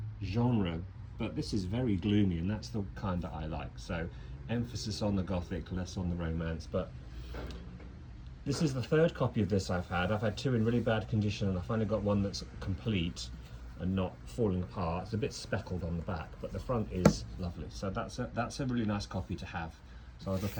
genre, but this is very gloomy, and that's the kind that I like. So emphasis on the Gothic, less on the romance. But this is the 3rd copy of this I've had. I've had 2 in really bad condition, and I finally got one that's complete and not falling apart. It's a bit speckled on the back, but the front is lovely. So that's a really nice copy to have. So I'll look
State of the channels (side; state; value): both; identical; correlation 1.00